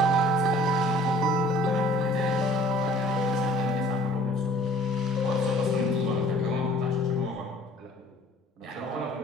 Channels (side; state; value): both; normal; correlation 0.52